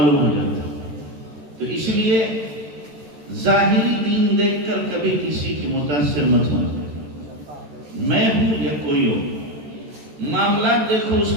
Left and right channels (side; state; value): left; late; 13 ms